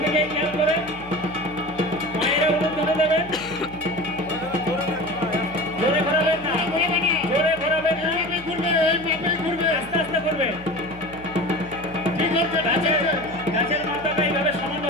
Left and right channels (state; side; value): noise; left; hum, 19 dB below the sound